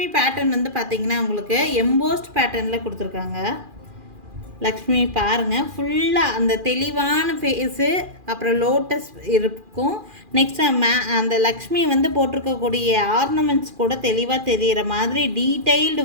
பேட்டர்ன் பார்த்திங்கன்னா உங்களுக்கு எம்போஸ்ட் பேட்டர்னில் கொடுத்துருக்காங்க. லக்ஷ்மி பாருங்கள், ஃபுல்லாக அந்த தெளிவான ஃபேஸு, அப்புறம் லோட்டஸ் இருக்கும். நெக்ஸ்ட் அந்த லக்ஷ்மி போட்டிருக்கக்கூடிய ஆர்னமெண்ட்ஸ் கூட தெளிவாக தெரிகிற மாதிரி டீட்டெயில்டு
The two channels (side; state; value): left; late; 2.4 ms